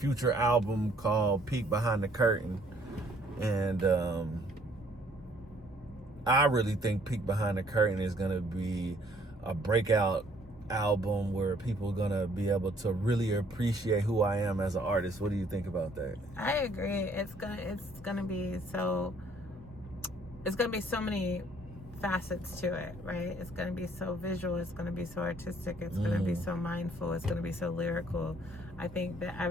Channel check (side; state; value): both; normal; correlation 0.62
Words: album called Peek Behind the Curtain. And I really think Peek Behind the Curtain is gonna be a breakout album where people are gonna be able to really appreciate who I am as an artist. What do you think about that? I agree. It's gonna be so many facets to it, right? It's gonna be so visual, it's gonna be so artistic, it's gonna be so mindful, it's gonna be so lyrical. I think